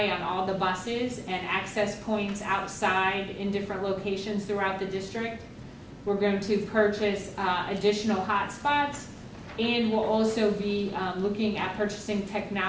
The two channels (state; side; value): identical; both; correlation 1.00